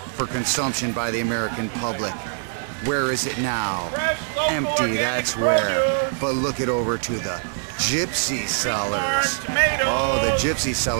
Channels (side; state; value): left; silent; 63 dB below the other